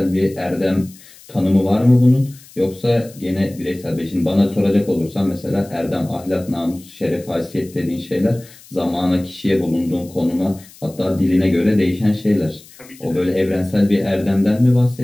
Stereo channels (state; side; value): noise; left; hiss, 23 dB below the sound